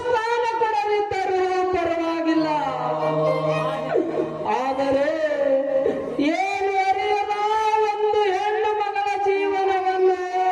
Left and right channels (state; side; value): identical; both; correlation 1.00